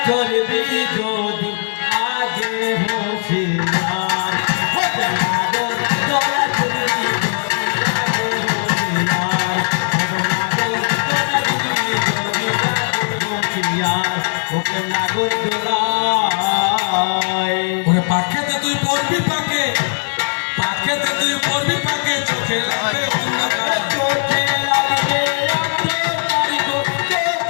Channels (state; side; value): silent; right; digital silence